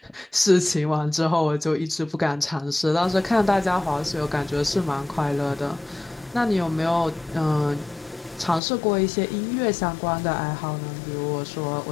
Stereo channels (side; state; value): right; drops out; at 8.6 s